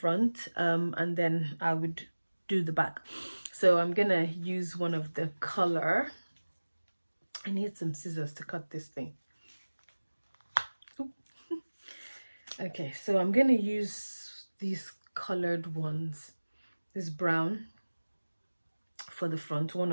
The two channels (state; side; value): inverted; both; correlation -1.00